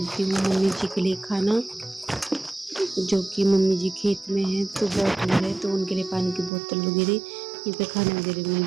हूँ मम्मी जी के लिए खाना, जो कि मम्मी जी खेत में हैं तो बहुत दूर है, तो उनके लिए पानी की बोतल वगैरह यहाँ पे खाने वगैरह में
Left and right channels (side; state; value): left; drops out; at 6.5 s